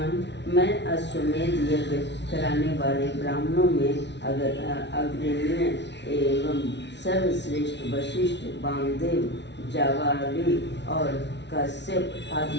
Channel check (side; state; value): right; late; 0.51 ms